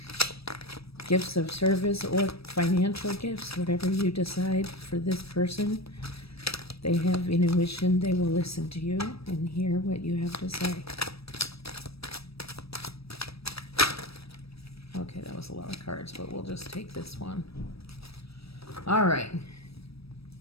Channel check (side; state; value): right; late; 0.77 ms